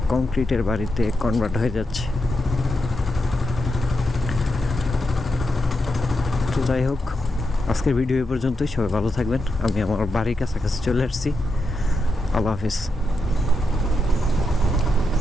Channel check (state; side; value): normal; both; correlation 0.85